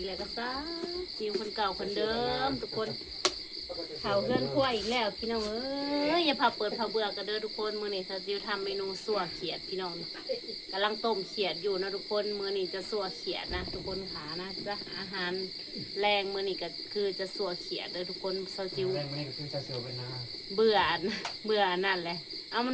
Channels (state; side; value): identical; both; correlation 1.00